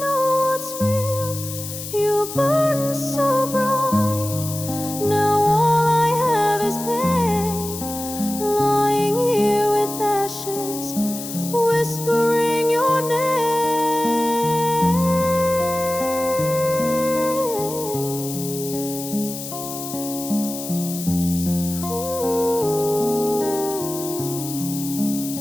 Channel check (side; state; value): left; noise; hiss, 9 dB below the sound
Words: what's real. You burn so bright, now all I have is pain. Lying here with ashes, whispering your name.